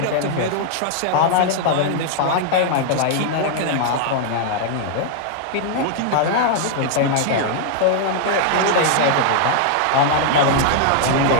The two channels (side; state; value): both; different; correlation -0.01